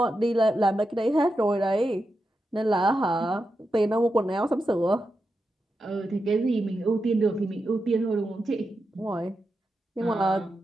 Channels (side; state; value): both; normal; correlation 0.88